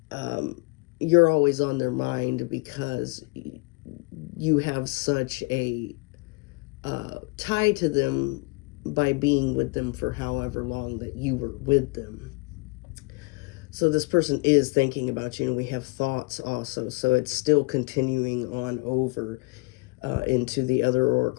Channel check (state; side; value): quieter; right; 27.2 dB